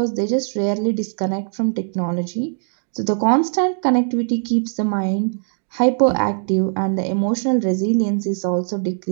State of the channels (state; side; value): silent; left; digital silence